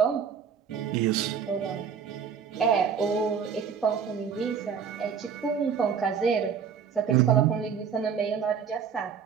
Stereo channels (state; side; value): quieter; left; 7.0 dB